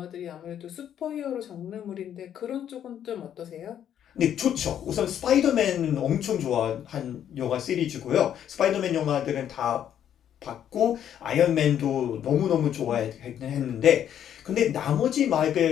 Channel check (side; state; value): right; quieter; 9.9 dB